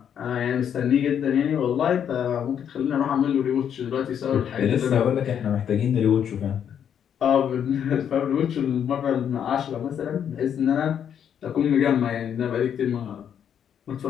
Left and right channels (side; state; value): right; quieter; 8.7 dB